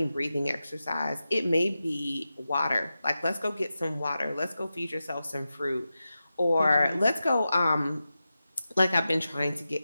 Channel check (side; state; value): both; inverted; correlation -0.92